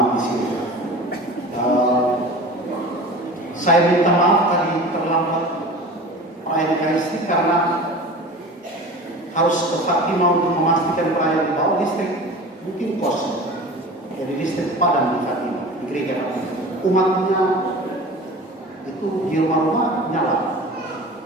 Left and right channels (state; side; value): normal; both; correlation 0.37